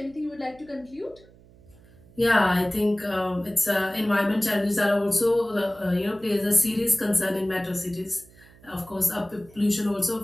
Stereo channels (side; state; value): right; noise; hum, 26 dB below the sound